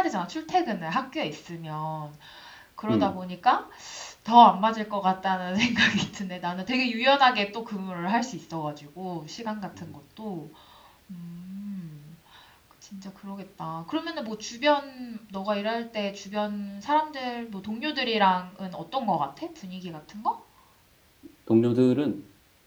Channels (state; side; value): identical; both; correlation 1.00